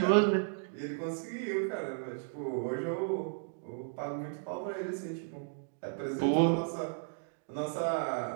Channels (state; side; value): silent; left; digital silence